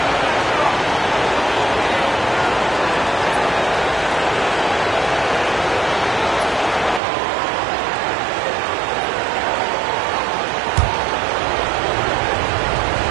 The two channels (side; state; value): left; drops out; at 7.0 s